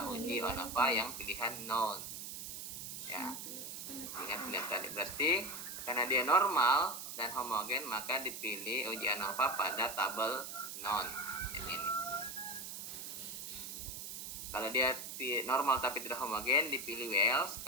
uji ANOVA yang pilihan non. Ya. Ingat pilihan tadi. Berarti karena dia normal dan homogen, maka dipilih uji ANOVA pada tabel non yang ini. Kalau dia normal tapi tidak homogen, dipilih Wells.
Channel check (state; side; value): noise; right; hiss, 7 dB below the sound